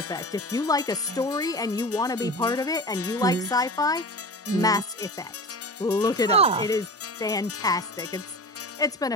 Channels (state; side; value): normal; both; correlation 0.32